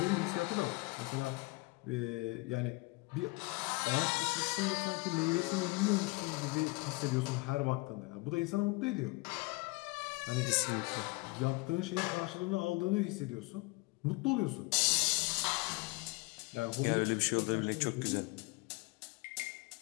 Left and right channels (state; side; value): quieter; right; 25.3 dB